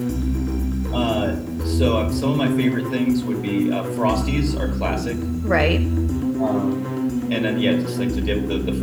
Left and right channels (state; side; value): identical; both; correlation 1.00